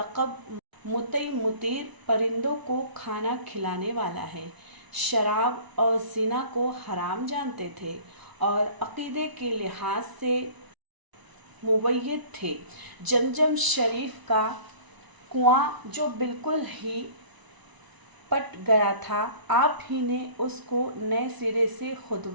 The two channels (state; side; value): late; left; 1.0 ms